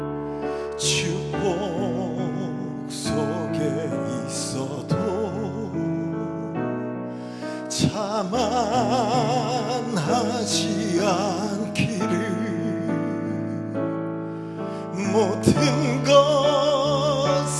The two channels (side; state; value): both; identical; correlation 1.00